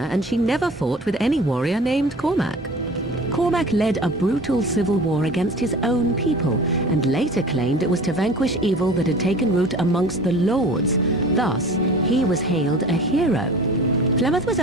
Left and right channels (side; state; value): both; normal; correlation 0.41